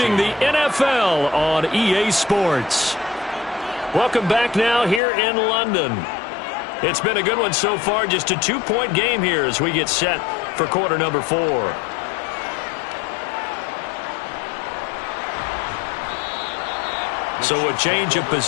the NFL on EA Sports. Welcome back now here in London. It's been a good one so far, just a 2-point game here as we get set for quarter number 4. So a change of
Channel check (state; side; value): drops out; right; at 5.0 s